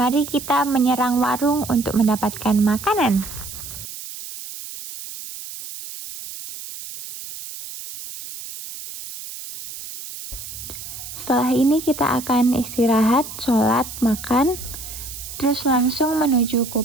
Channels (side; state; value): right; noise; hiss, 11 dB below the sound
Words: Mari kita menyerang warung untuk mendapatkan makanan. Setelah ini kita akan istirahat, sholat, makan, terus langsung menuju